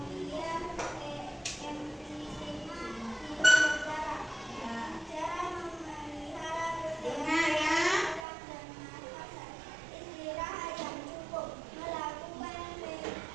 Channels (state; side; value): drops out; left; at 8.2 s